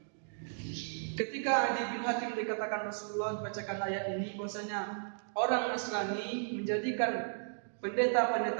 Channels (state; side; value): silent; left; digital silence